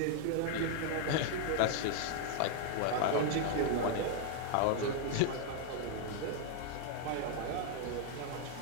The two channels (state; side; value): different; both; correlation 0.00